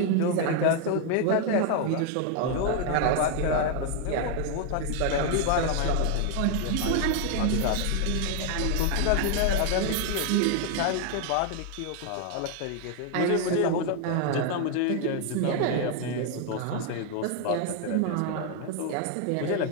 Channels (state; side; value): different; both; correlation 0.01